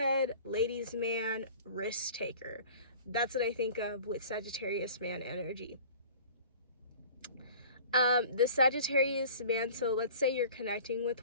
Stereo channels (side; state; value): both; inverted; correlation -0.45